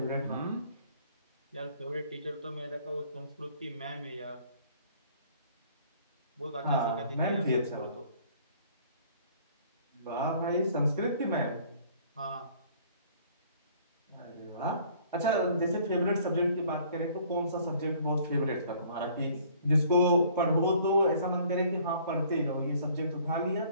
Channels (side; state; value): both; inverted; correlation -0.56